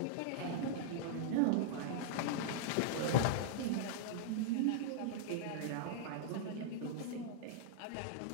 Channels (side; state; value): both; different; correlation -0.02